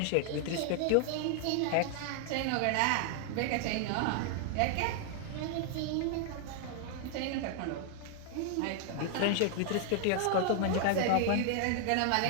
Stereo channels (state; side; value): different; both; correlation 0.00